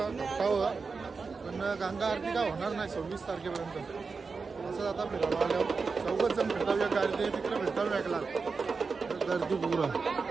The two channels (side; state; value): left; quieter; 4.7 dB